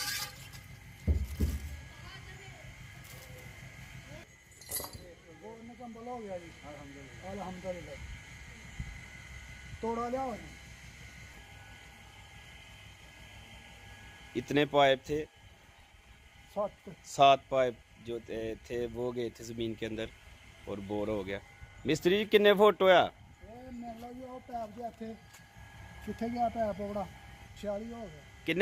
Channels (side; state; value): both; identical; correlation 1.00